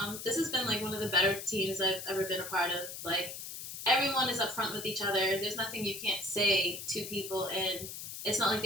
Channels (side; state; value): left; noise; hiss, 9 dB below the sound